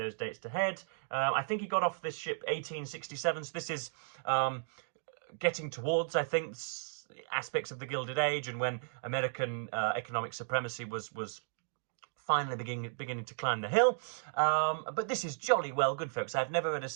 dates to head. I think he got off this ship 1867, so this is getting towards, I think, aspects of the Gilded Age, and when American economic supremacy was finally beginning to climb the hill. But this is jolly well good, folks. I've never read a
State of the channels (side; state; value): left; silent; digital silence